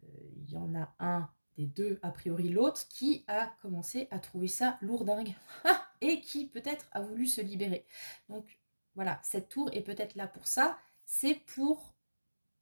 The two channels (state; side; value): inverted; both; correlation -1.00